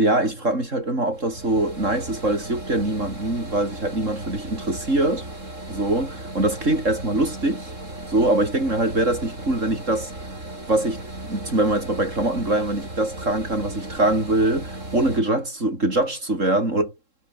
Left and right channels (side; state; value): left; late; 3.7 ms